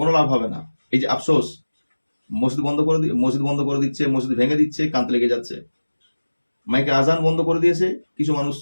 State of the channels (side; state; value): both; inverted; correlation -1.00